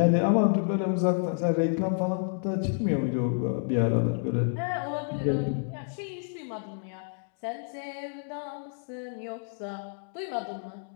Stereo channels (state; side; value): silent; right; digital silence